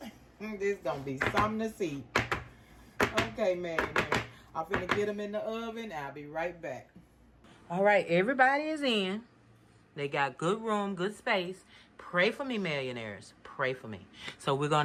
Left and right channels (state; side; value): identical; both; correlation 1.00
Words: This gonna be something to see. Okay, man. I'm finna get them in the oven. I'll be right back. All right, everybody is in. They got good room, good space. Pray for me, millionaires. Pray for me. So we're